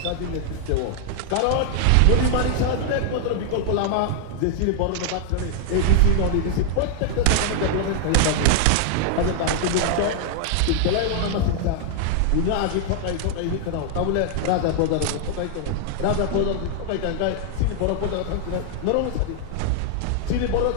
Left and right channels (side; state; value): both; different; correlation -0.01